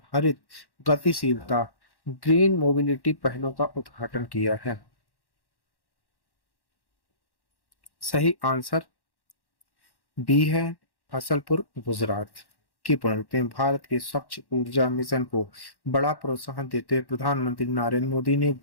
हरित गतिशीलता ग्रीन मोबिलिटी पहलों का उद्घाटन किया है? सही आंसर बी है, फसलपुर, गुजरात। की पढ़ते हैं। भारत के स्वच्छ ऊर्जा मिशन को बड़ा प्रोत्साहन देते हुए प्रधानमंत्री नरेंद्र मोदी ने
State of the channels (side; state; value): right; late; 1.1 ms